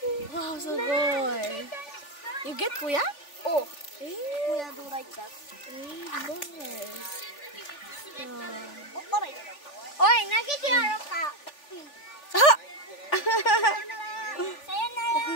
Wow, so good. You get kuya? Oh, Eh? kuya do like that. Nice. Oi, nagitiro ka. Ah! Sayonara.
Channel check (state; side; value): late; right; 3.4 ms